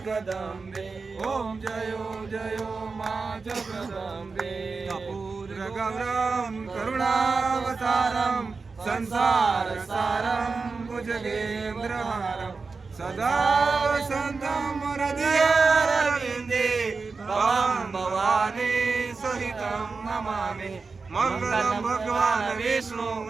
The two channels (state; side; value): quieter; left; 4.4 dB